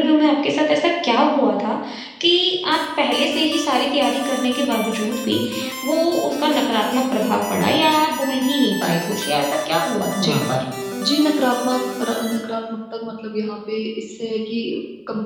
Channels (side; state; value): both; identical; correlation 1.00